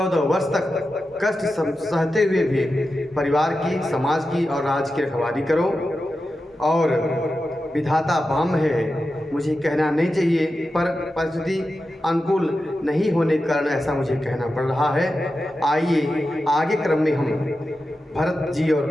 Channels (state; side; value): normal; both; correlation 0.91